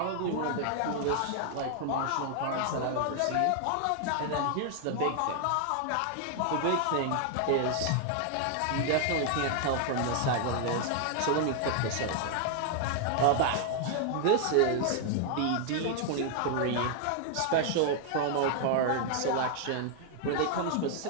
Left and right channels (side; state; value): both; different; correlation 0.00